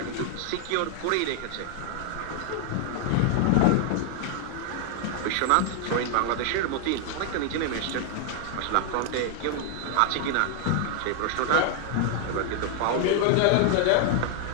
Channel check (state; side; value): different; both; correlation 0.00